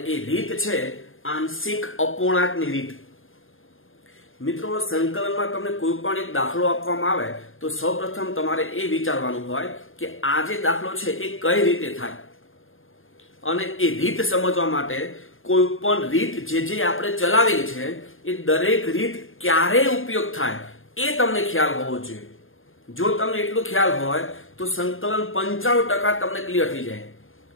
એ રીત છે આંશિક અપૂર્ણાંકની રીત. મિત્રો, સંકલનમાં તમને કોઈ પણ એક દાખલો આપવામાં આવે તો સૌપ્રથમ તમારે એ વિચારવાનું હોય કે આ જે દાખલો છે એ કઈ રીતે થાય, અને એ રીત સમજવા માટે કોઈ પણ રીત જે આપણે ચલાવેલી છે એ દરેક રીત ક્યારે ઉપયોગ થાય એ તમને ખ્યાલ હોવો જોઈએ. જો તમને એટલો ખ્યાલ હોય તો સંકલન 95% તમને ક્લિયર થઈ જાય.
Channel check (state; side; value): late; right; 0.59 ms